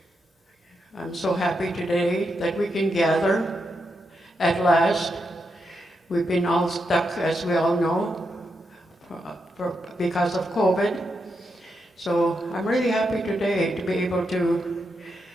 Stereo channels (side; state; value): both; normal; correlation 0.84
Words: I'm so happy today that we can gather at last. We've been all stuck, as we all know, because of COVID. So I'm really happy today to be able to